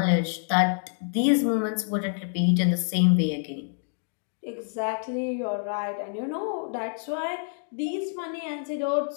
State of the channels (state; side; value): silent; right; 60 dB below the other